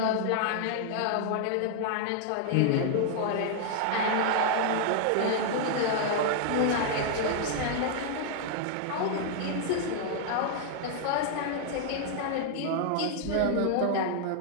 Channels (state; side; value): different; both; correlation -0.01